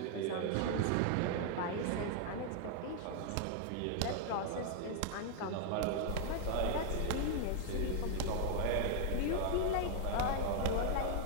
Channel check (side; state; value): both; different; correlation 0.00